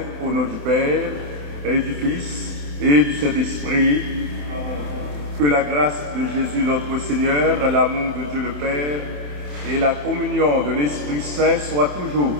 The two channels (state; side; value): late; left; 27 ms